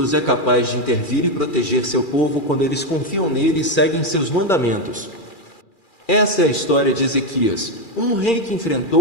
é capaz de intervir e proteger seu povo quando eles confiam nele e seguem seus mandamentos. Essa é a história de Ezequias, um rei que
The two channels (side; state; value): right; late; 2.4 ms